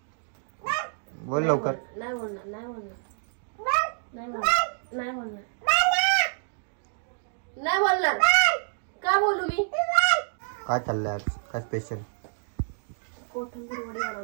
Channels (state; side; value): silent; left; digital silence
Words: बोल लवकर. नाही बोलणार. नाही बोलणार. नाही बोलणार. नाही बोलणार. नाही बोलणार. का बोलू मी? काय चाललंय आज? काय स्पेशल? कोथिंबीर वडे